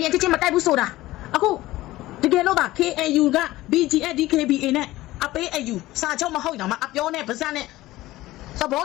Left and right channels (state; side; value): quieter; right; 17.2 dB